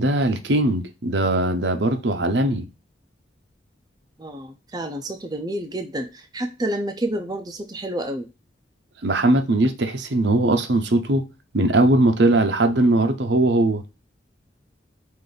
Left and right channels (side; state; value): both; normal; correlation 0.52